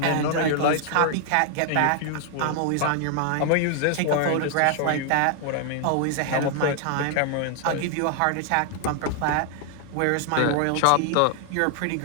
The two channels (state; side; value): different; both; correlation 0.00